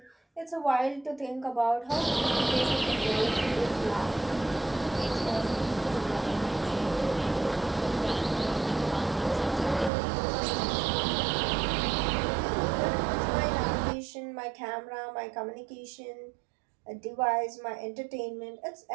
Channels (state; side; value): drops out; left; at 9.9 s